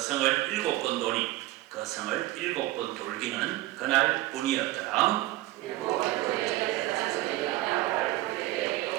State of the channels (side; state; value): left; quieter; 17.3 dB